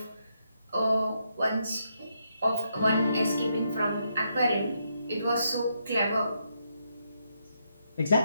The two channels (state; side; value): inverted; both; correlation -0.79